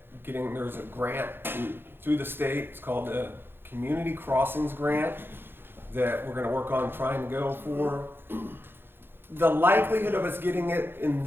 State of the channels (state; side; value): late; left; 0.10 ms